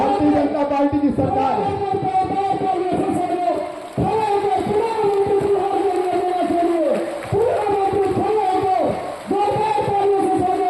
जनता पार्टी की सरकार है।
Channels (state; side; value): identical; both; correlation 1.00